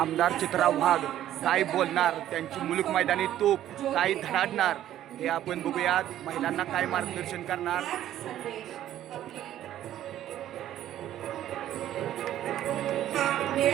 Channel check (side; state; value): left; quieter; 12.2 dB